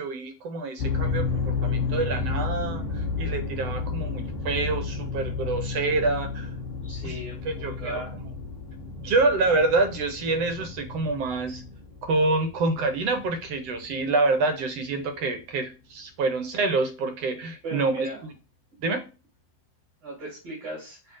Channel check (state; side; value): late; left; 7.8 ms